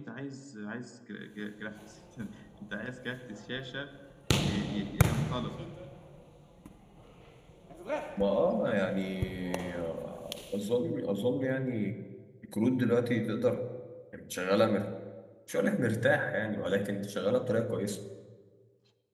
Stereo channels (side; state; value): both; identical; correlation 1.00